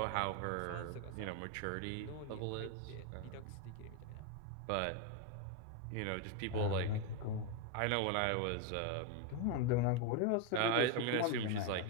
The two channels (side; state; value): both; different; correlation 0.01